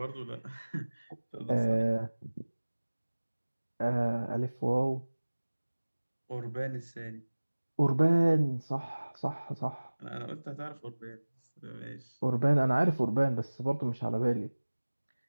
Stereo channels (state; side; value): inverted; both; correlation -1.00